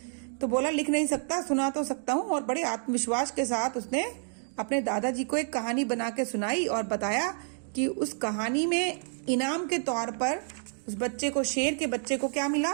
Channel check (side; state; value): left; silent; 58 dB below the other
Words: तो बोला, लिख नहीं सकता, सुना तो सकता हूँ। और बड़े आत्मविश्वास के साथ उसने अपने दादाजी को एक कहानी बना के सुनाई और बताया कि उस कहानी में इनाम के तौर पर उस बच्चे को, शेर के बच्चे को क्या मिला?